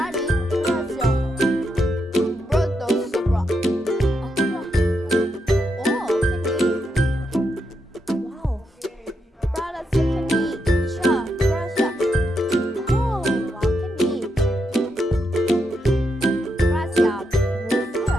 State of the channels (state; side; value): normal; both; correlation 0.82